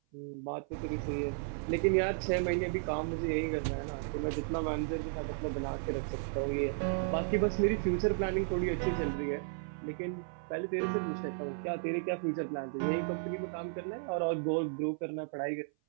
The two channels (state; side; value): silent; left; 55 dB below the other